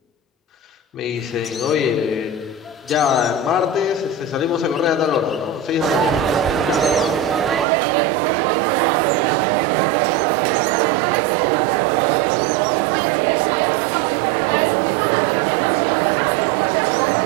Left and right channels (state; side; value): drops out; left; at 7.7 s